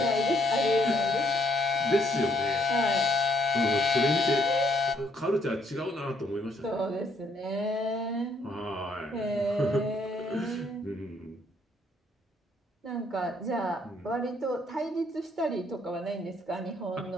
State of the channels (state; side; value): normal; both; correlation 0.68